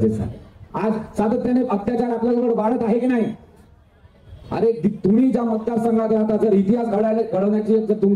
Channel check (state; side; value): identical; both; correlation 1.00